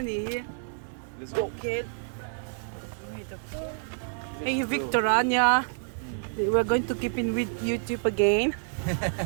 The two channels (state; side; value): silent; left; 59 dB below the other